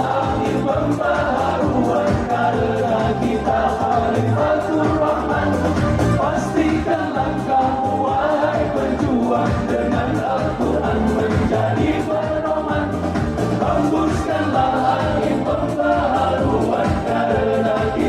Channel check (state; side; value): identical; both; correlation 1.00